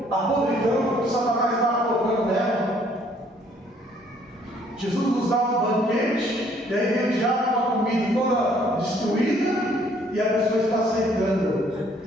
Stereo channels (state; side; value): normal; both; correlation 0.62